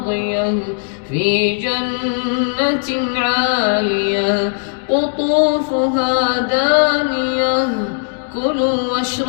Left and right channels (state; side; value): silent; right; 65 dB below the other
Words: في جنة عالية قطوفها دانية كلوا